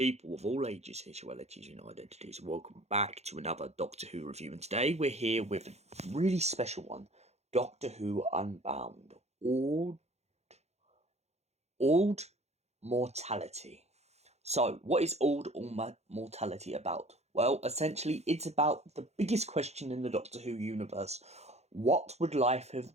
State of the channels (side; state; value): left; late; 0.31 ms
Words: of all ages, sexualities, and identities. Welcome back to another Doctor Who review. And today we're here with a really special one, Doctor Who Unbound, Auld Mortality. So, what is Auld Mortality about? Well, essentially, it's about the biggest question in the Doctor Who universe. What would life